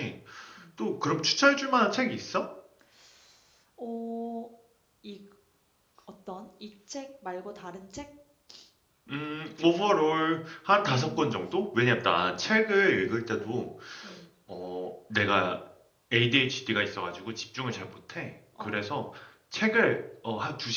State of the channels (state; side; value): identical; both; correlation 1.00